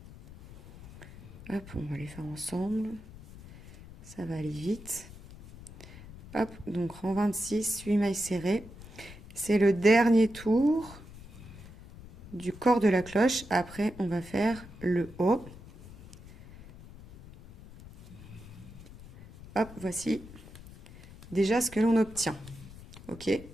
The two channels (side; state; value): left; noise; rumble, 17 dB below the sound